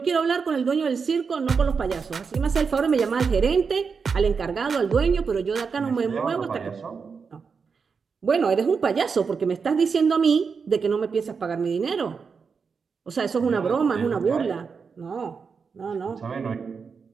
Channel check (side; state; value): left; quieter; 5.5 dB